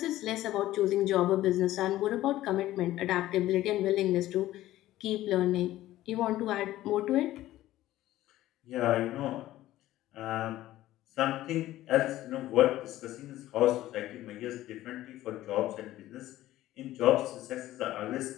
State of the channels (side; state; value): right; quieter; 15.0 dB